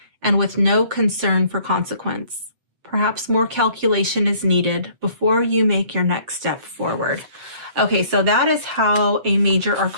and with no concern for consequence. Perhaps more calculation is needed before you make your next step forward. Okay, so that is how a major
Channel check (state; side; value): late; left; 7.7 ms